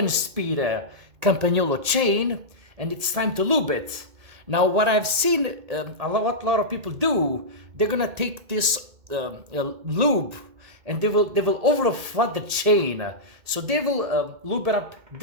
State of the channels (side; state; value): left; late; 2.2 ms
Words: Campagnolo chain, and it's time to lube it. Now, what I've seen a lot of people do, they're gonna take this lube and they will over flood the chain. So they will lube it up